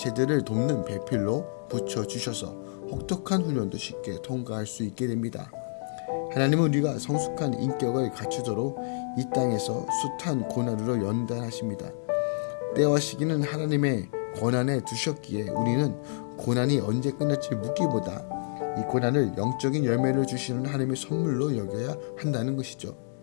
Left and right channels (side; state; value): right; silent; digital silence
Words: 돕는 배필로 붙여주셔서 혹독한 훈련도 쉽게 통과할 수 있게 됩니다. 하나님은 우리가 성숙한 인격을 갖추도록 이 땅에서 숱한 고난으로 연단하십니다. 때와 시기는 하나님의 권한에 두셨기에 우리는 고난이 언제 끝날지 묻기보다 이 고난을 영적인 열매를 주시는 하나님의 선물로 여겨야 한다는 것이죠.